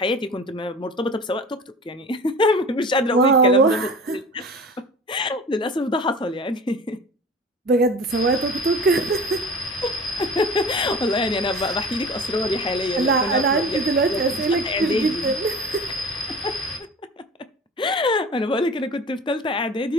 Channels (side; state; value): both; normal; correlation 0.39